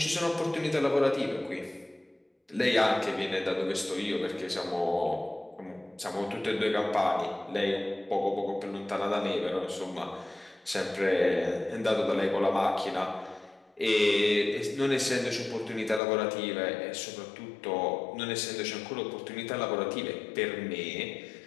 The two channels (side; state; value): right; drops out; at 16.0 s